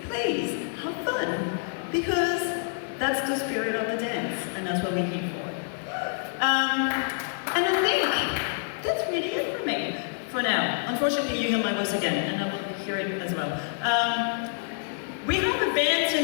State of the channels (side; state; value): right; silent; digital silence